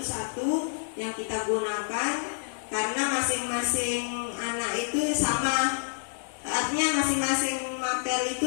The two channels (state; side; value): silent; right; 59 dB below the other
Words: yang kita gunakan karena masing-masing anak itu sama, artinya masing-masing mapel itu